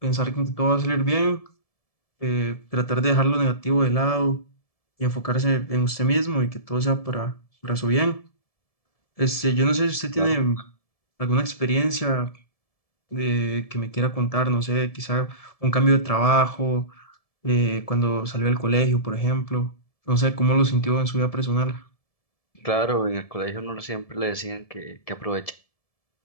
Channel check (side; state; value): right; late; 1.7 ms